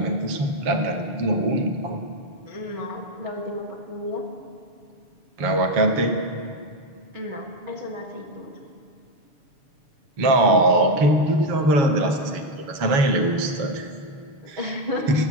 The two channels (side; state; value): left; late; 7.2 ms